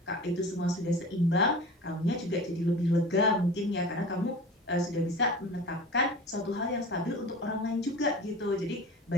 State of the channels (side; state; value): both; normal; correlation 0.37